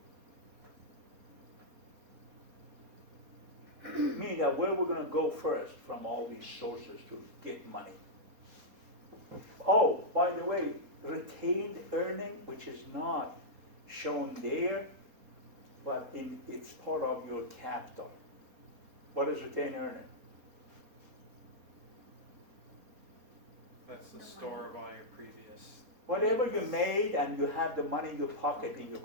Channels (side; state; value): left; late; 4.2 ms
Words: Meaning that where we're going to go first from all these sources to get money. Oh, by the way, retained earning, which is not shown there, but it's part of your capital. What is retained earning? That's the store of all your previous. Whatever you made and you have the money in your pocket in your